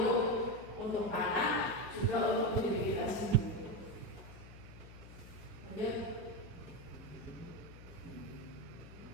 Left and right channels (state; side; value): noise; left; hum, 16 dB below the sound